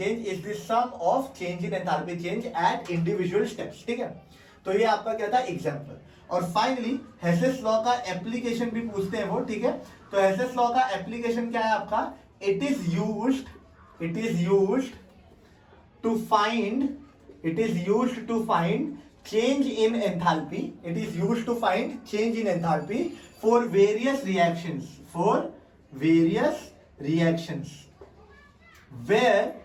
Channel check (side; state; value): both; identical; correlation 1.00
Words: is the sum of change in enthalpy change at individual steps, ठीक है। तो ये आपका क्या था? एग्जांपल। और फाइनली हेसेस लॉ का एप्लीकेशन भी पूछते हैं वो, ठीक है। तो हेसेस लॉ का एप्लीकेशन क्या है आपका? It is used to find change in enthalpy. It is used to find change in enthalpy for various reactions where